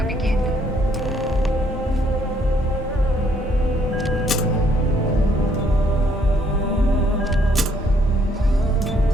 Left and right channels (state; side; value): normal; both; correlation 0.67